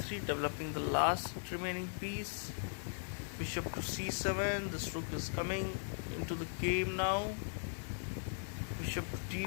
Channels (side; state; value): right; silent; digital silence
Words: developing the last remaining piece. Bishop to c7, this rook is coming into the game now. Bishop to